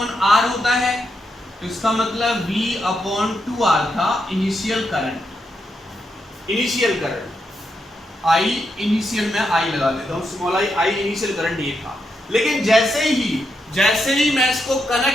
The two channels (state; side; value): normal; both; correlation 0.82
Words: R होता है, तो इसका मतलब V अपॉन 2R था इनिशियल करंट। I इनिशियल में I लगा देता हूं, स्मॉल I इनिशियल करंट ये था। लेकिन जैसे ही मैं इसको